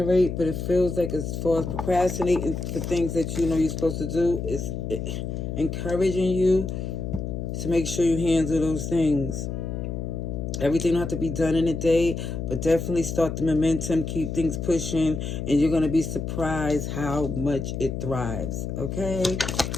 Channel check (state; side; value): noise; left; hum, 4 dB below the sound